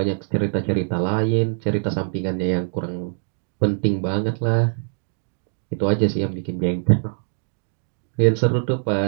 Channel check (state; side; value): silent; left; digital silence